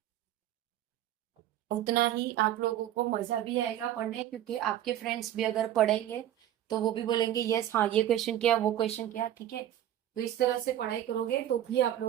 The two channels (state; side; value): quieter; left; 12.0 dB